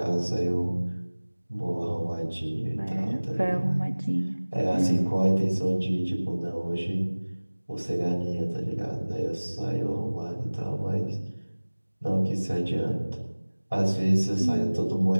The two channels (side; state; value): both; inverted; correlation -1.00